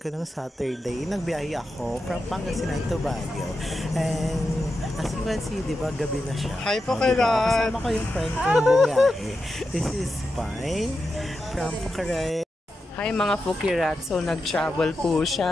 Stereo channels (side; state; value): both; normal; correlation 0.89